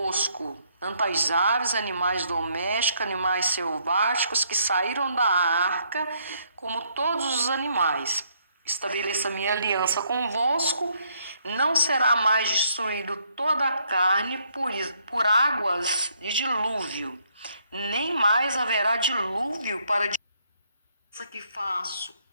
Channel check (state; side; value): inverted; both; correlation -0.70